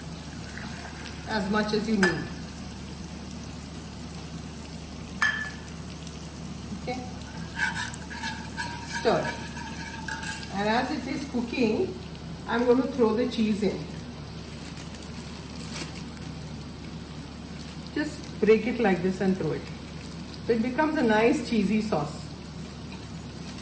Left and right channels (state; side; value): identical; both; correlation 1.00